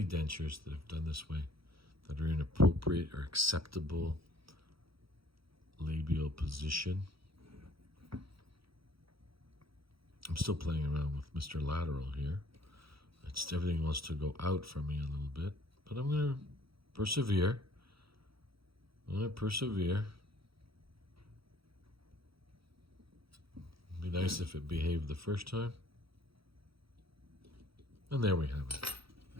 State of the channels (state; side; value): late; left; 0.75 ms